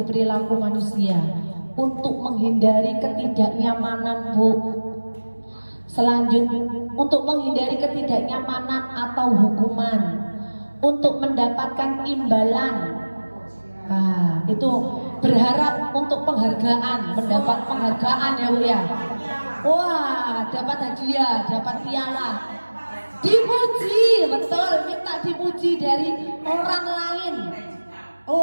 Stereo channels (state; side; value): inverted; both; correlation -1.00